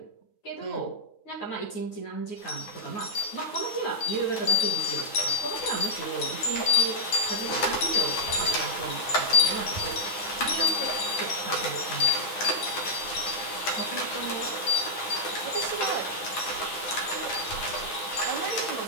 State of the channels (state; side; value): late; right; 9.7 ms